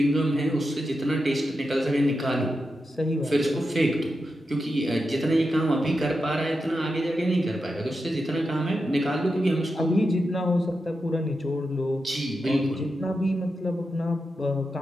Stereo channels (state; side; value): normal; both; correlation 0.88